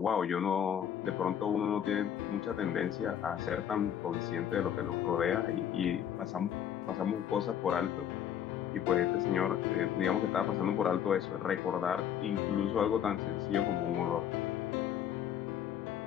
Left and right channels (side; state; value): right; quieter; 9.4 dB